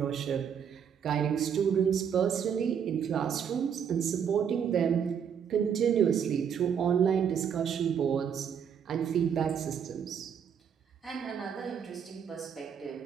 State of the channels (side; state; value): left; quieter; 7.8 dB